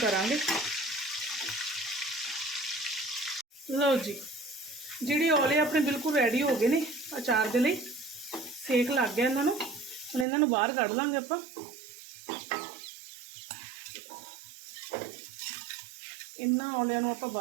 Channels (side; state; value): left; drops out; at 10.2 s